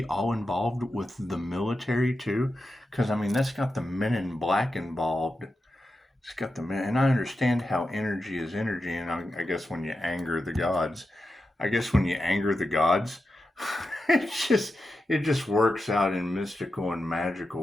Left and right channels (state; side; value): normal; both; correlation 0.90